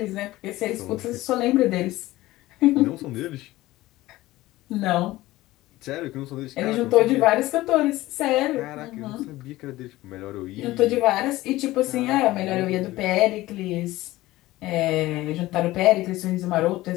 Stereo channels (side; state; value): right; quieter; 17.5 dB